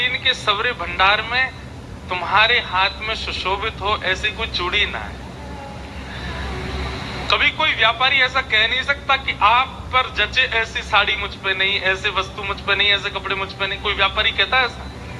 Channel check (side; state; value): both; identical; correlation 1.00